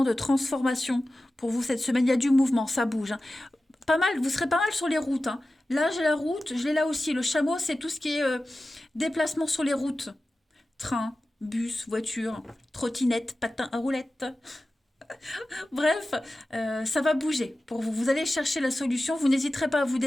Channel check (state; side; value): normal; both; correlation 0.95